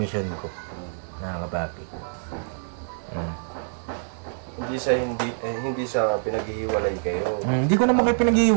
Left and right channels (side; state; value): left; silent; 57 dB below the other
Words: mission ko. Nakakapapi. Hindi sa pinaghihiwalay kayo. Hindi ko naman kayo